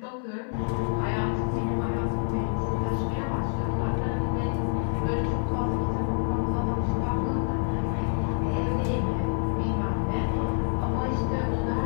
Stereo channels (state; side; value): silent; right; 56 dB below the other